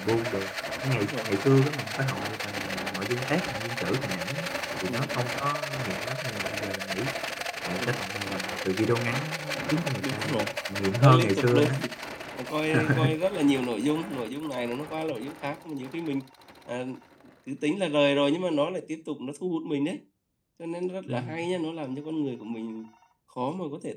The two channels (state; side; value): identical; both; correlation 1.00